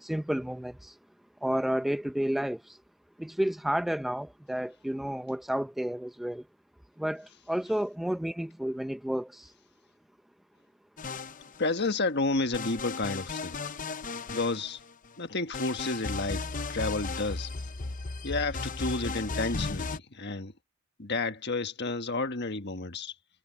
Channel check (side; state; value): both; normal; correlation 0.48